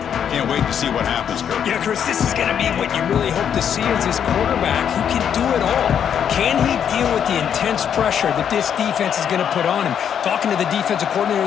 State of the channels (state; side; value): quieter; right; 8.5 dB